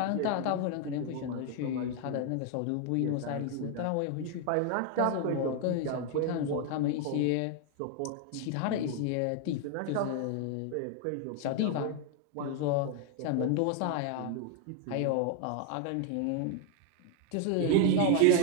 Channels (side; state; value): both; different; correlation 0.01